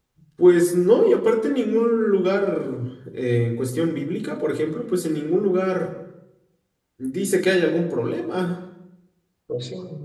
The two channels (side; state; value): both; identical; correlation 1.00